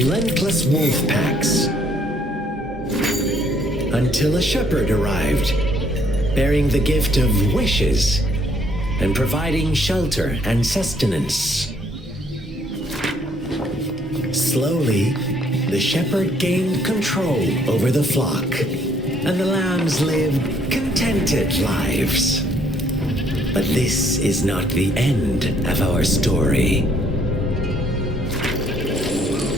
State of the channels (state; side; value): normal; both; correlation 0.66